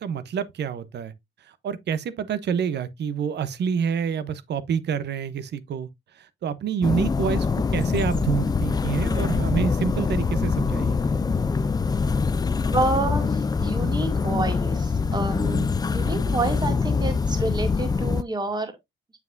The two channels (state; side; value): normal; both; correlation 0.71